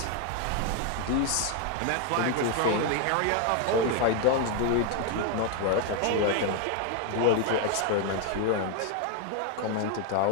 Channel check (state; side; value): different; both; correlation 0.01